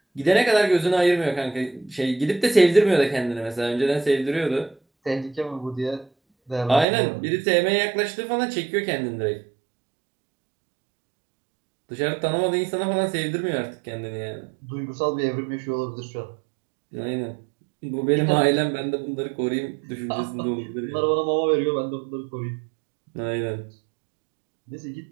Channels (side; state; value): left; drops out; at 6.9 s